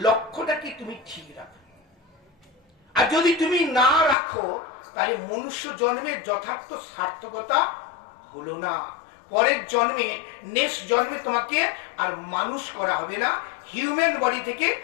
লক্ষ্যটাকে তুমি ঠিক রাখো। আর যদি তুমি না রাখো, তাহলে মনুষ্য জন্মের যথার্থ সার্থকতা হলো না। পরের জন্মে, নেক্সট জন্মে তোমাকে আর মানুষ করা হবে না, হিউম্যান বডি থেকে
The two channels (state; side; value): drops out; right; at 4.2 s